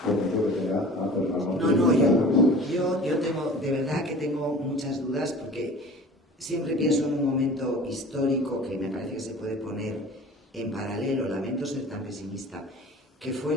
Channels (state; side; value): normal; both; correlation 0.42